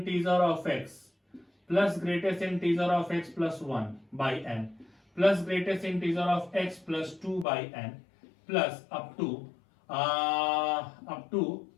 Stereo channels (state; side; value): drops out; right; at 7.5 s